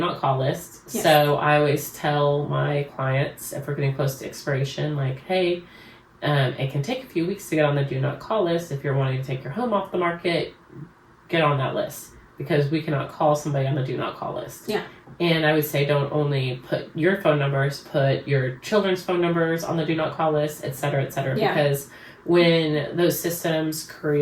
call list. Yes. So I always tell my clients, if we're getting close to expiration, hey, it can take a few weeks to get on the do not call list. If you're wanting to take your home off the market, get on that list, because we cannot call somebody on the do not call list. Yeah. And I would say don't only put your phone numbers, put your children's phone numbers on the do not call list, et cetera, because when those systems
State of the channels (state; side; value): identical; both; correlation 1.00